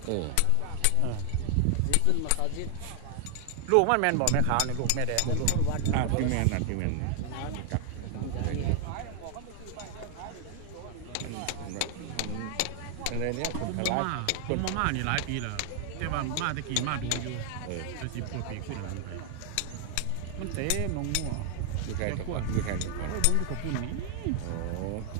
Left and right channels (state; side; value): different; both; correlation 0.00